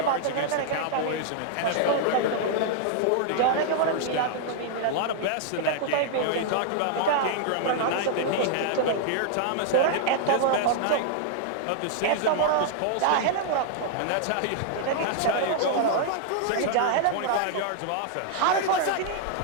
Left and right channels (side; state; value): both; different; correlation -0.01